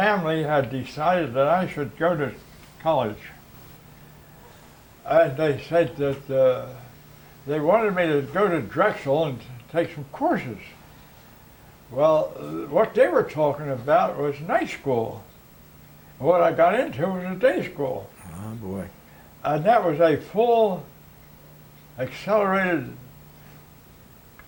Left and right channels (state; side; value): identical; both; correlation 1.00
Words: had decided that I should go to college. And they said that they wanted me to go to Drexel and take some courses. Well, what they were talking about was night school. What I got into was a day school. Oh boy. And that was a full accelerated